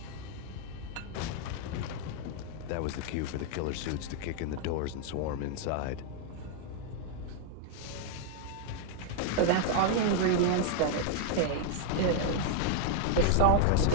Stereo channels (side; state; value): both; different; correlation 0.00